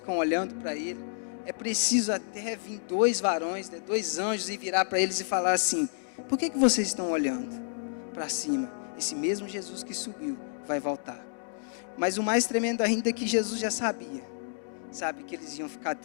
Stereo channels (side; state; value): right; silent; digital silence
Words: olhando para Ele. É preciso até vir dois varões, né, dois anjos, e virar para eles e falar assim: por que vocês estão olhando para cima? Esse mesmo Jesus que subiu vai voltar. Mas o mais tremendo ainda é que Jesus já sabia, sabe, que eles iam ficar